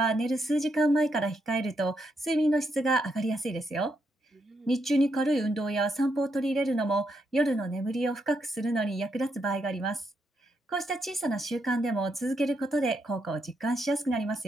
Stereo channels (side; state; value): both; normal; correlation 0.79